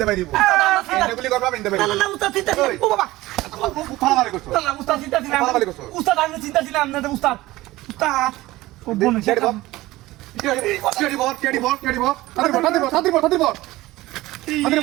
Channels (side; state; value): left; quieter; 18.2 dB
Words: পারিব গুলি করবা আমি ইনতে পারিব না উস্তাদ চিন্তা ও বাবা ফালামারি করছো না উস্তাদ চিন্তা ছিলাম ফালামারি করছো উস্তাদ আমি চিন্তা ছিলাম না উস্তাদ ও বোন কেডি বল